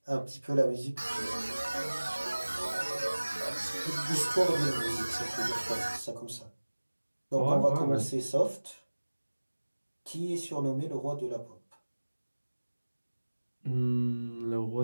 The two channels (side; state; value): both; inverted; correlation -1.00